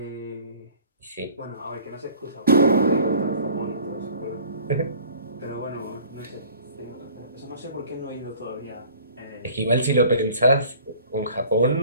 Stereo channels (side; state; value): both; inverted; correlation -0.50